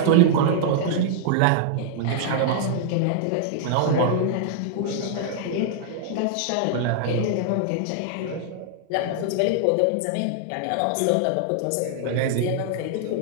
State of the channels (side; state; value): both; different; correlation -0.01